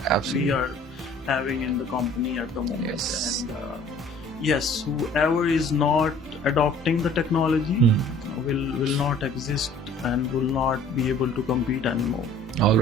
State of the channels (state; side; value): normal; both; correlation 0.52